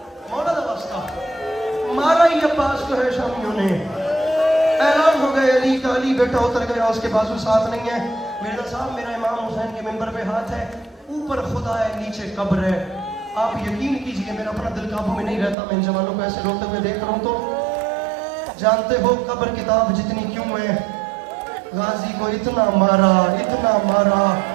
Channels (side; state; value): left; drops out; at 15.6 s